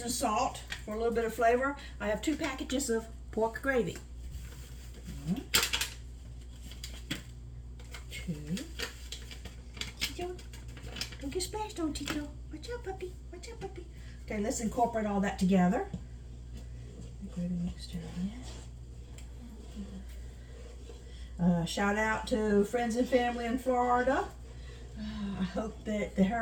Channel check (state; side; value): identical; both; correlation 1.00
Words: salt for a little bit of flavor, I have 2 packages of pork gravy. 2. Tito, don't get splashed on, Tito. Watch out, puppy. Watch out, puppy. Okay, let's incorporate all that together. Gravy mixture. Shout out to friends and family in Florida. I hope that the